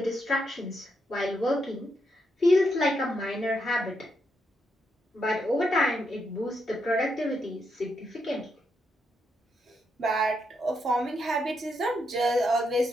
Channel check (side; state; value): both; normal; correlation 0.80